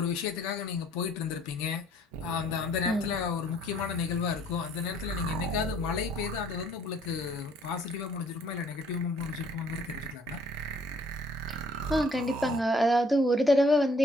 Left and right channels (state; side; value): normal; both; correlation 0.60